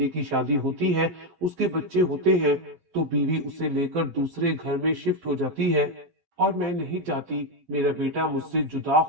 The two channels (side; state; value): left; late; 12 ms